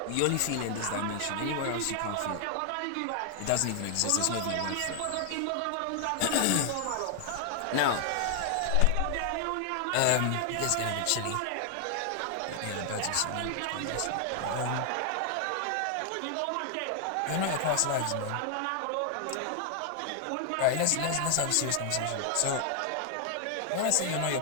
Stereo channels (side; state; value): both; different; correlation 0.00